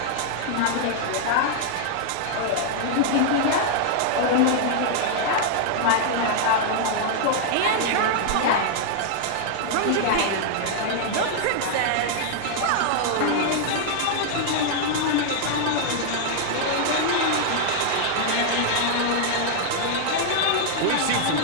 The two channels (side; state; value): both; different; correlation 0.00